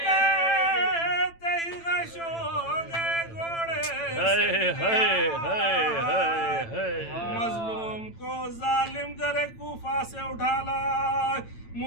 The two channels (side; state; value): right; late; 8.9 ms